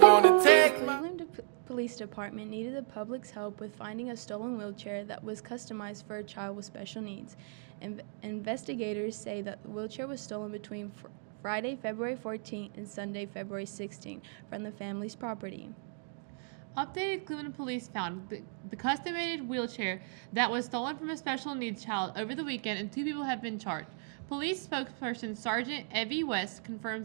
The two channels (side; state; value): left; silent; 55 dB below the other